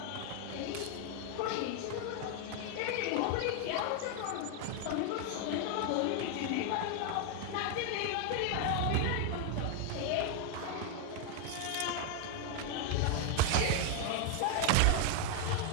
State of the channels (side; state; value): both; different; correlation 0.00